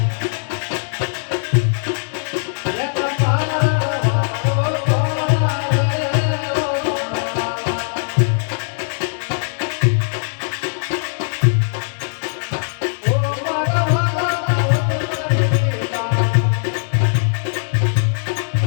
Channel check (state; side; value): silent; right; digital silence